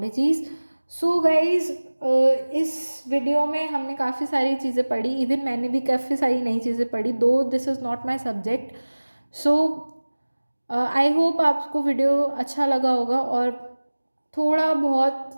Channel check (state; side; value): inverted; both; correlation -1.00